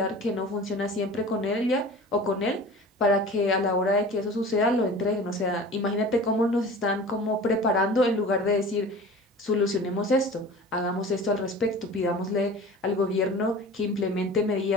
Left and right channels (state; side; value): normal; both; correlation 0.39